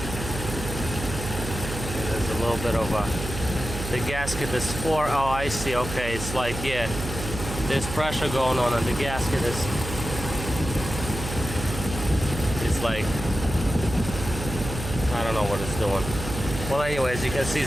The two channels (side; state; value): right; noise; hum, 7 dB below the sound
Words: There's a little bit of a The gasket is for, oh, I see, okay, it's like, yeah, there's pressure going on and the gasket is, it's like, I don't know what it's doing. Well, anyway, as you can see,